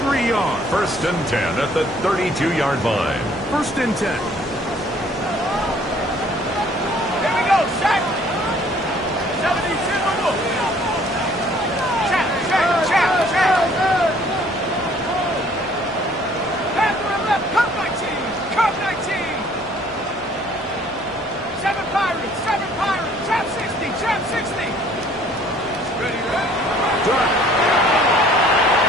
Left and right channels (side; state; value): both; normal; correlation 0.58